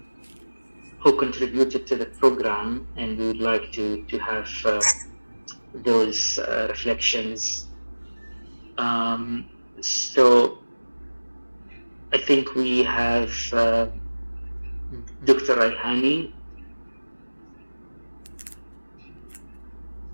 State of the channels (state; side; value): inverted; both; correlation -1.00